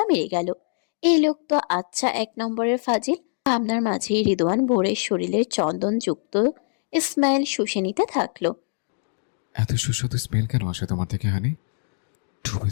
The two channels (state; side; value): silent; right; digital silence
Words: মেরে গেল। এই লোক তো আচ্ছা এক নম্বরের ফাজিল। ভাবনার মাঝেই রিদওয়ান ভোরের শরীরের চন্দনযুক্ত স্মেল শুষে নিতে থাকলো। এত সুস্বাদু স্মেল কেন আসে তোমার থেকে হানি? ডুবে